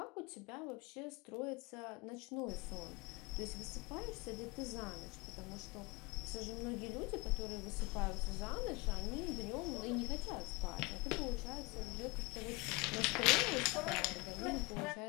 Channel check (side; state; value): right; quieter; 26.1 dB